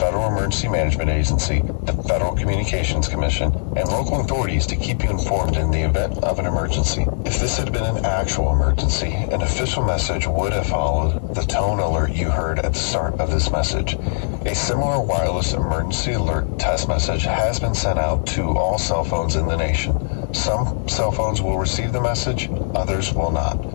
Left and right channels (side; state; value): right; silent; digital silence